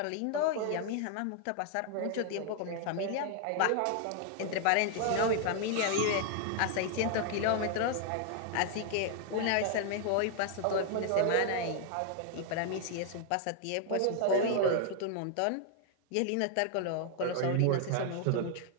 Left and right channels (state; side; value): different; both; correlation 0.00